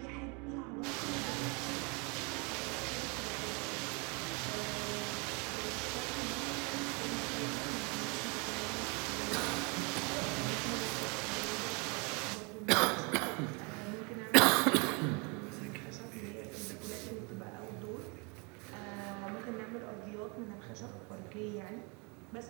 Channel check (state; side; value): quieter; left; 31.5 dB